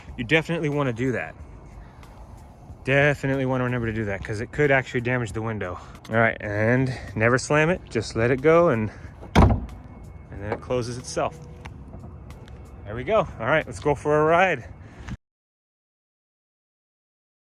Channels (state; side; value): identical; both; correlation 1.00